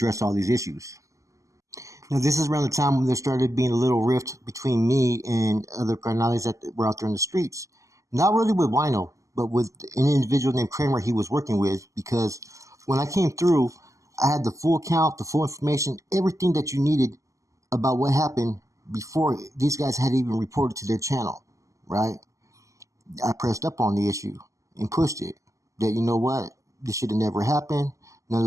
all these issues. Now, this is around the time when there started being a little rift between me and other carnales that were out there in the streets. Not really with Wino, but with an individual named Kramer he was working with, because when I came through, I had the full count, the full information, everything that you needed about what happened before these guys had even reported to their channel, right? I pressed up on the issue and pushed it. That, you know what, this should have never happened. None of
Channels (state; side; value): late; left; 0.16 ms